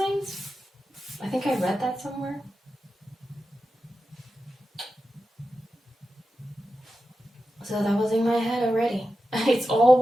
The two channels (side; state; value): both; normal; correlation 0.91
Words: I think I read that somewhere. So that was in my head already. It's all